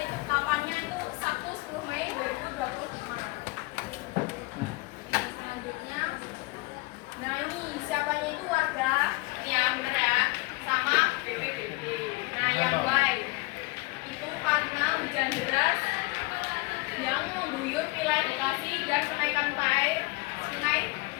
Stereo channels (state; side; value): quieter; right; 24.4 dB